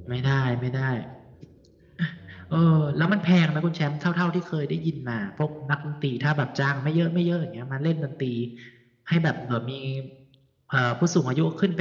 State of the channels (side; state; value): both; identical; correlation 1.00